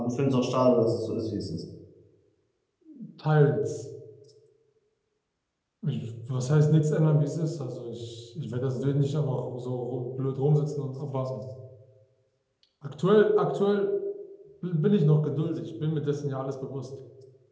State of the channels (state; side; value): identical; both; correlation 1.00